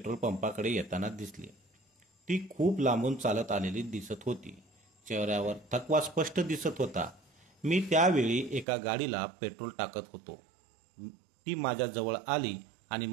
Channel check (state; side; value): drops out; left; at 8.7 s